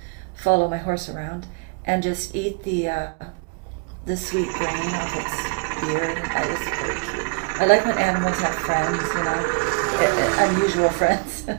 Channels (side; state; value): left; quieter; 31.9 dB